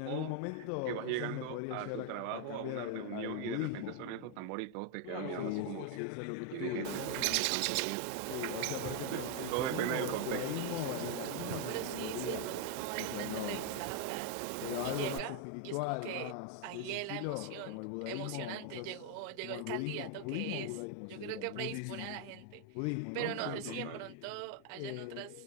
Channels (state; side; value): different; both; correlation 0.01